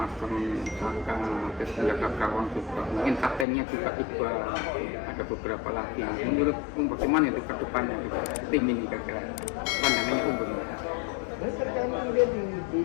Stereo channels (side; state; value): right; drops out; at 3.5 s